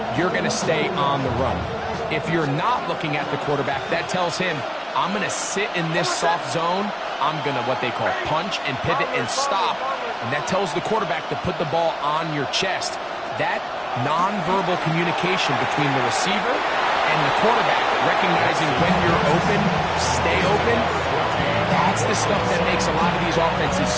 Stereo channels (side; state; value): both; identical; correlation 1.00